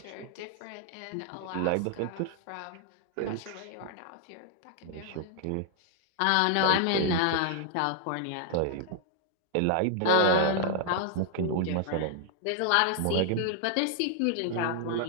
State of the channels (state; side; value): different; both; correlation 0.00